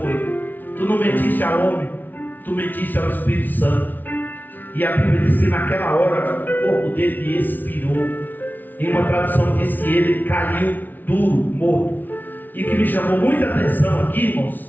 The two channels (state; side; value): late; right; 0.085 ms